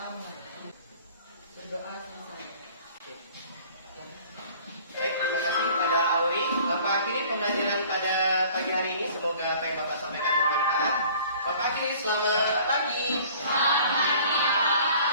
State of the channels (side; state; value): both; inverted; correlation -0.51